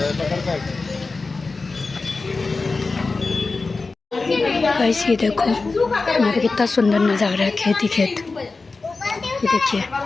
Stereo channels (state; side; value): quieter; right; 3.9 dB